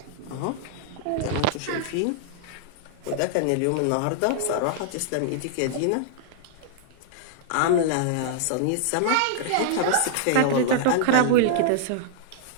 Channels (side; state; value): both; different; correlation -0.01